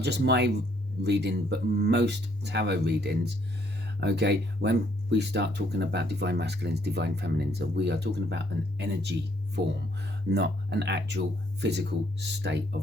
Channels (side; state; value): both; normal; correlation 0.68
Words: just my reading but most tarot readings, okay, when we start talking about divine masculines, divine feminines, we are talking about an energy form, not an actual physical state